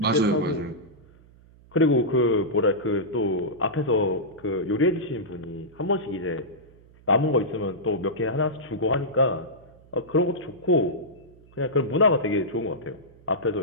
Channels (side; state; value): right; noise; hum, 26 dB below the sound